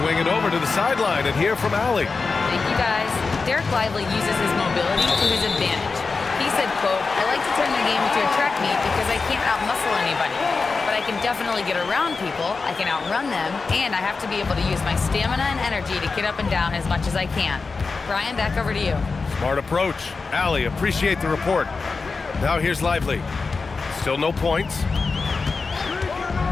it over to the sideline and hear from Allie. Thank you, guys. Derek Lively uses his mobility to his advantage. He said, quote, "I like to turn the game into a track meet because I can't outmuscle anybody. But I can definitely get around people, I can outrun them, and I have to be able to use my stamina and energy to get up and down as much as I can." Brian, back over to you. Smart approach. Allie, appreciate the report. Now here's Lively. Still no points.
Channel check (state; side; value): quieter; right; 4.4 dB